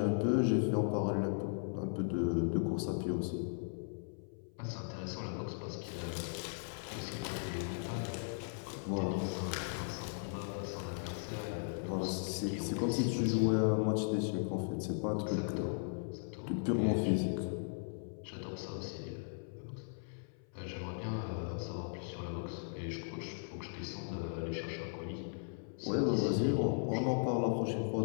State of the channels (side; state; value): right; silent; 53 dB below the other